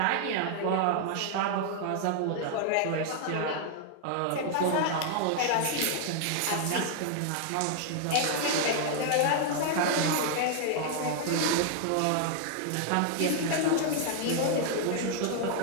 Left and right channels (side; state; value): both; different; correlation 0.00